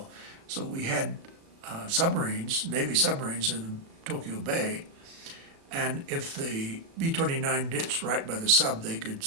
So we had submarines, Navy submarines in Tokyo Bay, and if the B-29 ditched right by the sub, they could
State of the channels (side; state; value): left; late; 36 ms